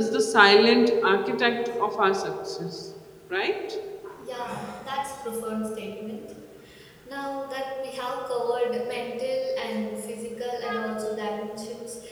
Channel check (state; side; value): identical; both; correlation 1.00